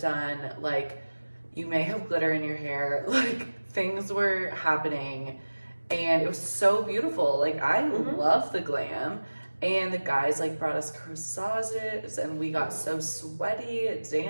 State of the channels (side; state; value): both; inverted; correlation -1.00